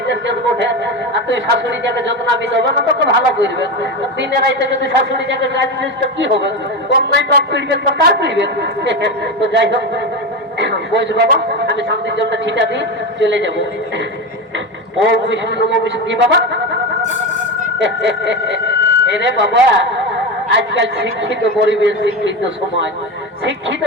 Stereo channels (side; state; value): both; normal; correlation 0.18